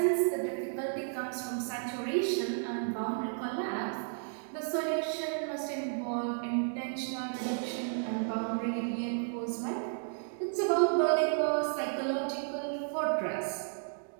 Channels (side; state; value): left; silent; digital silence